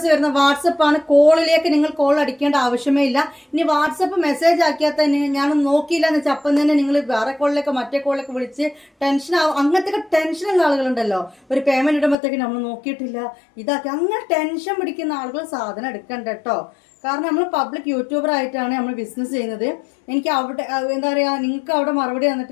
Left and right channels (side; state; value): right; drops out; at 12.2 s